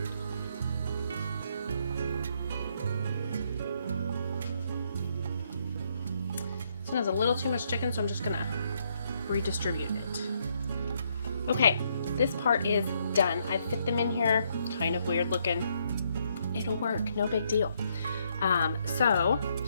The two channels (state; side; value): inverted; both; correlation -0.73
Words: This one has a little too much chicken, so I'm just gonna redistribute it. Okay, this part is done. I've fit them in here, kind of weird looking. It'll work, no big deal. So